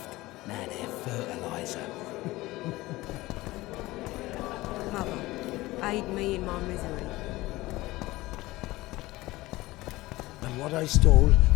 Now they're fertilizer. Mother, aid me in my misery. And what I stole,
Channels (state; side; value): quieter; right; 19.2 dB